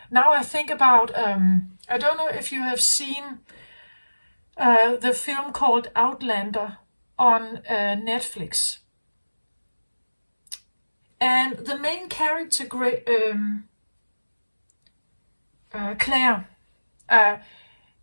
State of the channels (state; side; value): inverted; both; correlation -1.00